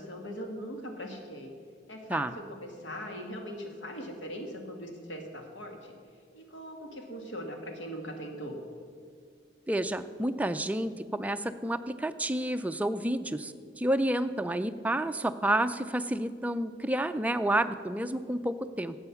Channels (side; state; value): both; normal; correlation 0.75